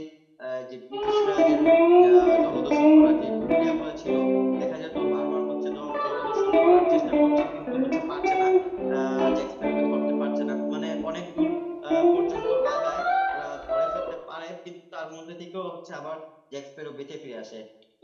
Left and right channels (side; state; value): both; identical; correlation 1.00